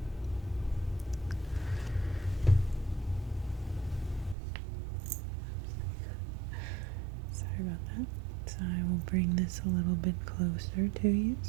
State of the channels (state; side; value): drops out; left; at 4.4 s